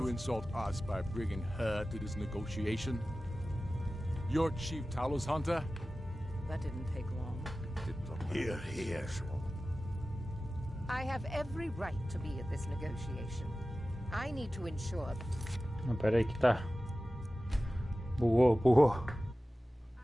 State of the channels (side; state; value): both; normal; correlation 0.95